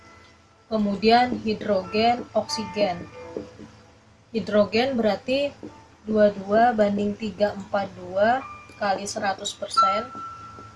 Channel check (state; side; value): identical; both; correlation 1.00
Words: Kemudian hidrogen, oksigen. Hidrogen berarti 22 banding 342 kali 100%.